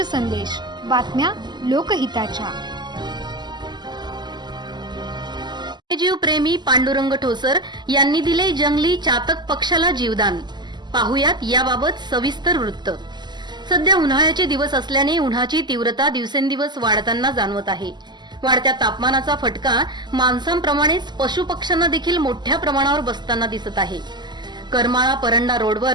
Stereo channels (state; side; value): late; left; 0.21 ms